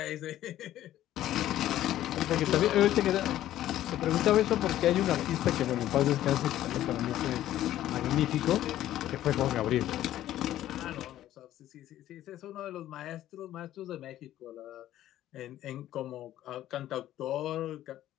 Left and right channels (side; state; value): right; quieter; 13.2 dB